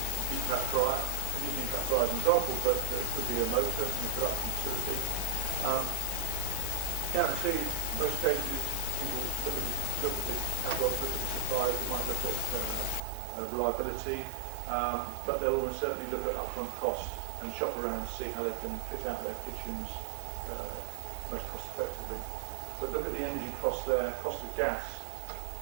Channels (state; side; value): drops out; left; at 13.0 s